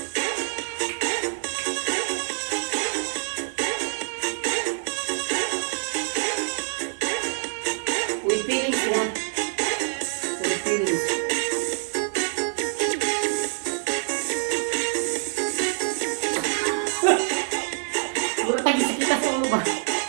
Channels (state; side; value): silent; left; digital silence